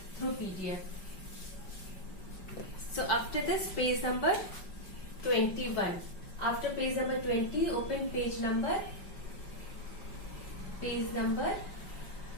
through PDF. So after this, page number 21. After page number 20, open page number 21.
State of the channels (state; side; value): late; right; 5.4 ms